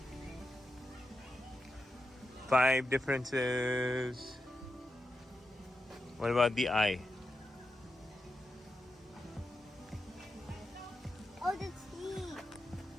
5 differences. What about the eye? Oh, the teeth.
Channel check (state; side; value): normal; both; correlation 0.89